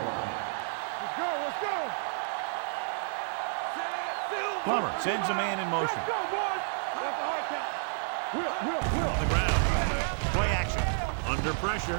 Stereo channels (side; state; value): left; silent; digital silence